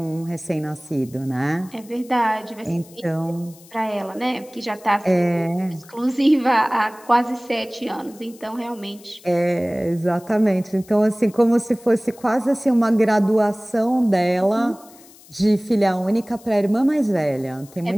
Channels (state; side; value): noise; left; hiss, 24 dB below the sound